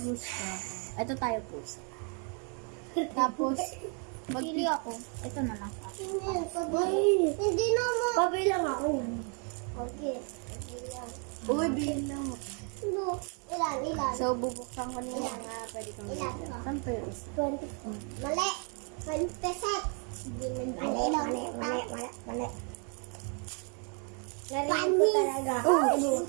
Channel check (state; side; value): quieter; left; 38.9 dB